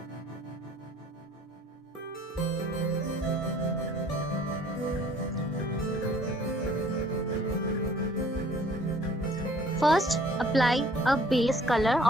First, apply a base color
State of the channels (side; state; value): both; normal; correlation 0.56